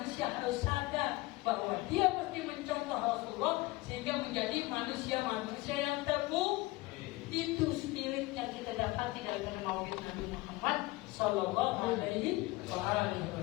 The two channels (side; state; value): right; quieter; 20.8 dB